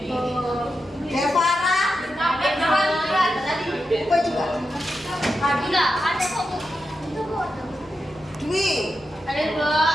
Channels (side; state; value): left; noise; hum, 29 dB below the sound